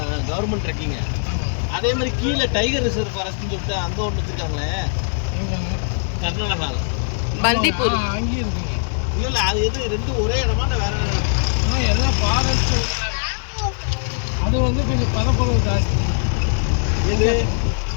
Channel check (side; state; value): right; silent; 65 dB below the other